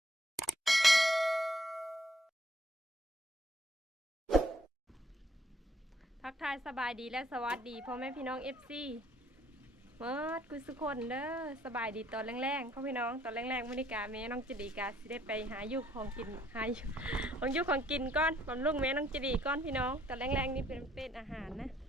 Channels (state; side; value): normal; both; correlation 0.65